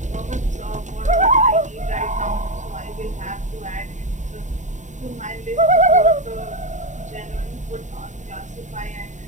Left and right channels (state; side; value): late; left; 0.35 ms